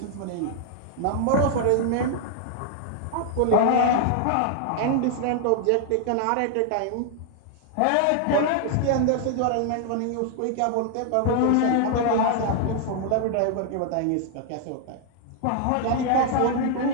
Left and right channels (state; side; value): different; both; correlation 0.00